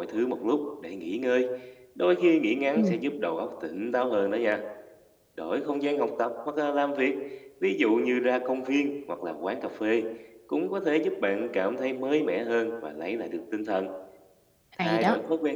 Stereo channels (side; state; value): both; identical; correlation 1.00